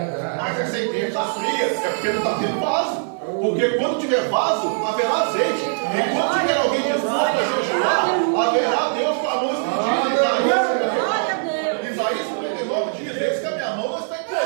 Mas essa ideia está fria, é porque não está tendo vaso. Porque quando tiver vaso, haverá azeite. E quando tiver alguém disposto a jejuar, haverá Deus com a mão estendida. Isaías 49 diz: eis que a minha mão não está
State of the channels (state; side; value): silent; left; digital silence